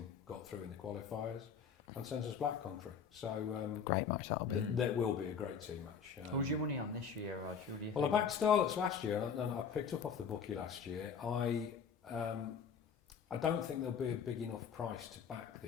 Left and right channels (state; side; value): quieter; right; 6.7 dB